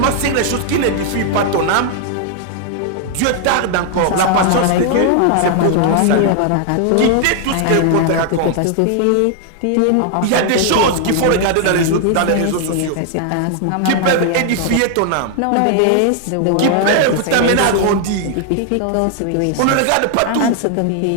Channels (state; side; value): different; both; correlation 0.00